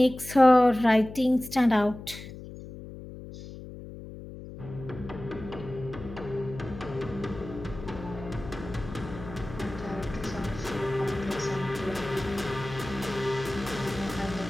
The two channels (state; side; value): noise; left; hum, 13 dB below the sound